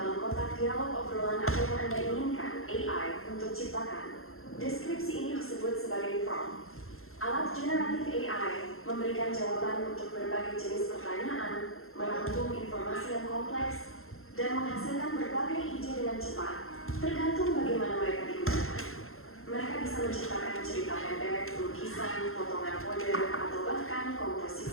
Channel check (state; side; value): late; right; 0.61 ms